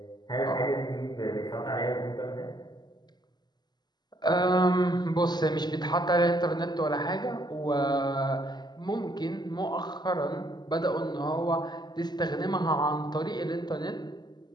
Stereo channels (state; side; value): late; right; 0.21 ms